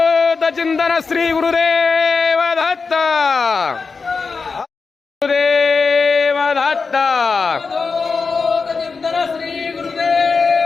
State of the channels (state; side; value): quieter; right; 4.7 dB